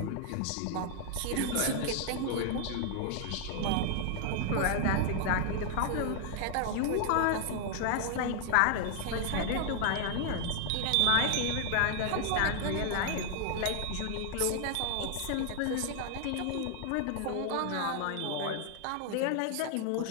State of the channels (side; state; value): both; different; correlation 0.00